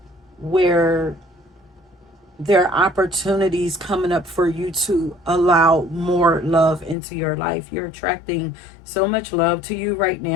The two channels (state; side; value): drops out; right; at 7.0 s